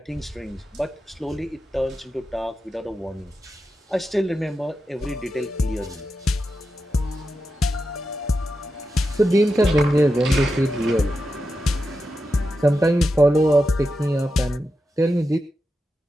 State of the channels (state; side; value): normal; both; correlation 0.89